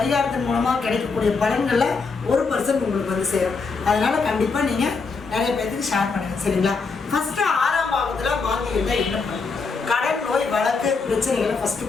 மூலமாக கிடைக்கக்கூடிய பலன்களில் 1% உங்களுக்கு சேரும். அதனால் கண்டிப்பாக நீங்கள் நிறைய பேர்த்துக்கு ஷேர் பண்ணுங்கள், சரிங்களா? ஃபஸ்ட்டு 6ஆம் பாவத்தில் மாந்தி இருந்தால் என்ன பண்ணும்? கடன், நோய், வழக்கு, பிரச்சனைகளை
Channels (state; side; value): quieter; right; 4.6 dB